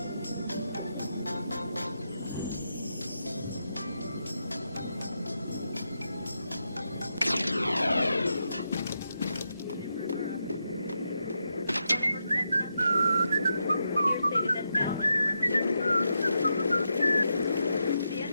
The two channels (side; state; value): both; inverted; correlation -0.84